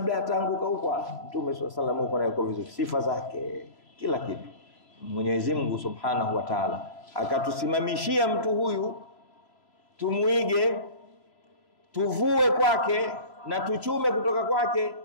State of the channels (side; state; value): right; late; 3.0 ms